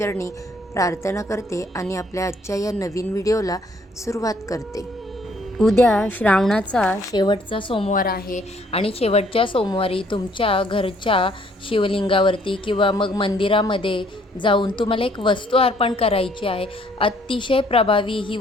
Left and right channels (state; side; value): normal; both; correlation 0.64